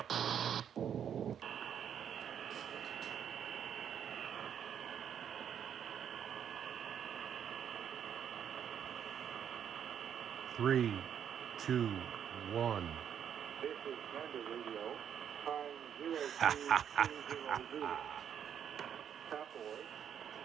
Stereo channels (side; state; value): left; quieter; 8.8 dB